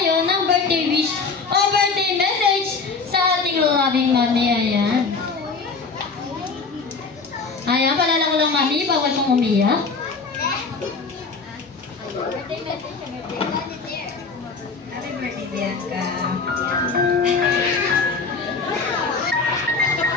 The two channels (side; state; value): right; quieter; 4.5 dB